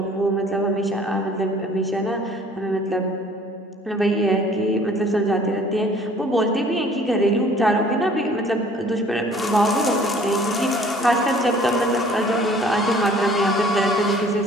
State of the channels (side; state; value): both; normal; correlation 0.54